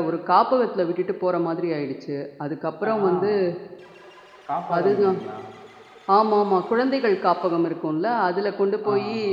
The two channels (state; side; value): identical; both; correlation 1.00